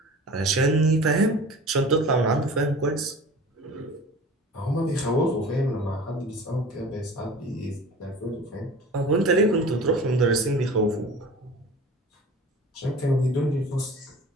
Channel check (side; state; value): both; normal; correlation 0.40